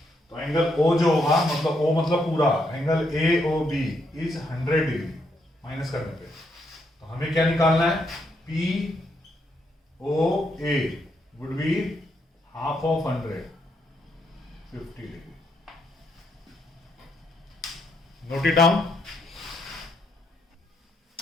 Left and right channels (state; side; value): normal; both; correlation 0.77